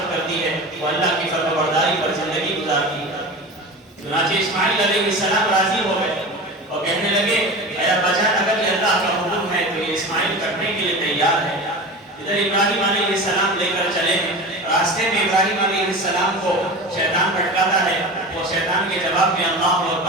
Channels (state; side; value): normal; both; correlation 0.31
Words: کرتی ہے، وہ اللہ کی فرمانبرداری پر زندگی گزارتی ہے۔ چنانچہ اسماعیل علیہ السلام راضی ہو گئے اور کہنے لگے اے ابا جان اگر یہ اللہ کا حکم ہے تو یہ اسماعیل کرنے کے لیے تیار ہے۔ ادھر ابراہیم علیہ السلام لے کر چلے ہیں، راستے میں ابراہیم علیہ السلام کو شیطان بھٹکاتا ہے، وہ شیطان کے جواب میں اللہ